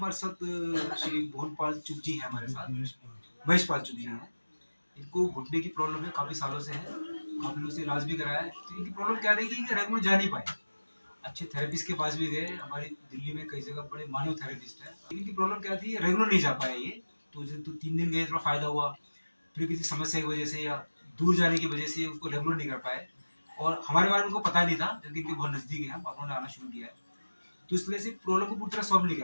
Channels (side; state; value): both; inverted; correlation -1.00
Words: साथ श्री मोहनपाल चुग जी हैं हमारे साथ, महेशपाल चुग जी हैं। इनको घुटने की प्रॉब्लम है, काफ़ी सालों से है, काफ़ी लोगों से इलाज भी कराया है। तो इनकी प्रॉब्लम क्या रही कि रेगुलर जा नहीं पाए, अच्छे थेरेपिस्ट के पास भी गए, हमारी दिल्ली में कई जगह बड़े मानव थेरेपिस्ट है। इनकी प्रॉब्लम क्या थी, रेगुलर नहीं जा पाए ये। तो 3 दिन गए, थोड़ा फायदा हुआ, फिर किसी समस्या की वजह से या दूर जाने की वजह से उसको रेगुलर नहीं कर पाए, और हमारे बारे में उनको पता नहीं था, क्योंकि इनके बहुत नज़दीक है, हम उन्होंने आना शुरू किया है। तो इसलिए से प्रॉब्लम को पूरी तरह सॉल्व नहीं